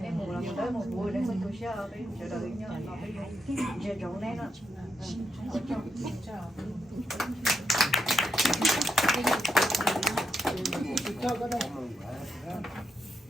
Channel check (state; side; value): normal; both; correlation 0.81